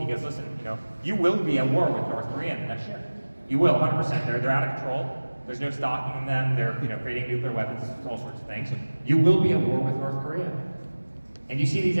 goes, listen, you will be at war with North Korea in the next year. You will, 100%. They're out of control. There's no stopping them. They're creating nuclear weapons, all sorts of things. You will be at war with North Korea. And you see these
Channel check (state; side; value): inverted; both; correlation -1.00